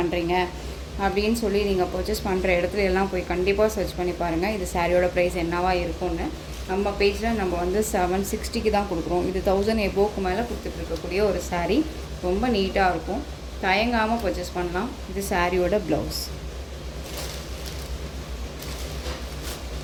அப்படின்னு சொல்லி நீங்கள் பர்ச்சேஸ் பண்ணுற இடத்துல எல்லாம் போய் கண்டிப்பாக சர்ச் பண்ணி பாருங்கள் இது சாரியோட ப்ரைஸ் என்னவா இருக்கும்னு. நம்ம பேஜில் நம்ம வந்து 760க்கு தான் கொடுக்குறோம். இது 1000 எபோவுக்கு மேலே கொடுத்துட்ருக்கக்கூடிய ஒரு சாரீ, ரொம்ப நீட்டாக இருக்கும். தயங்காமல் பர்ச்சேஸ் பண்ணலாம். இது சாரியோட ப்ளவுஸ்.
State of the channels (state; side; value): identical; both; correlation 1.00